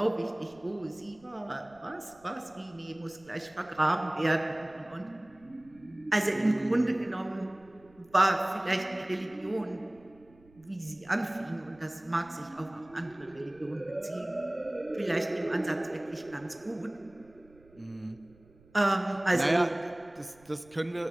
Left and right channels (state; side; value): noise; right; rumble, 27 dB below the sound